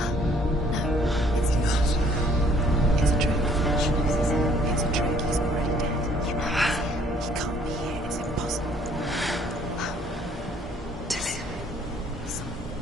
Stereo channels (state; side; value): normal; both; correlation 0.61